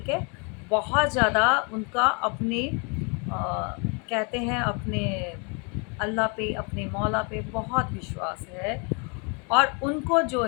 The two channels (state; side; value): quieter; right; 34.5 dB